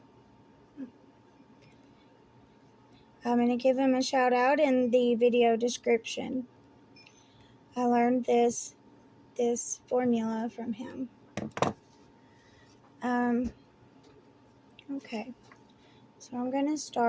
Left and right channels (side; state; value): both; identical; correlation 1.00